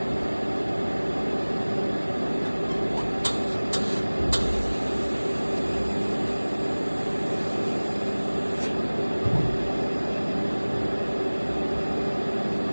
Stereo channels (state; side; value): inverted; both; correlation -1.00